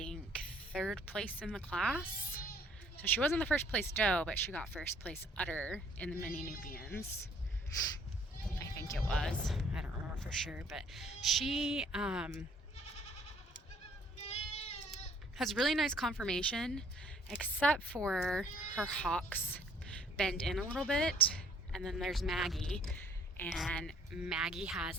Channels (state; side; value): normal; both; correlation 0.60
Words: 3rd place in the class. So she wasn't the first place doe, but she got first place udder in the Mini Nubians. I think it was. I don't remember for sure, but she has really nice conformation, except for her hocks bend in a little bit. And then there's Maggie, and Maggie